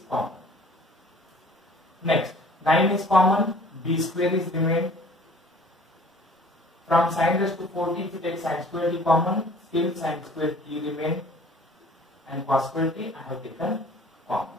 common. Next, 9 is common, b square is remained. From sin raised to 4t, if you take sin square t common, still sin square t remain, and cos square t I have taken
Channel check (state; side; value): normal; both; correlation 0.51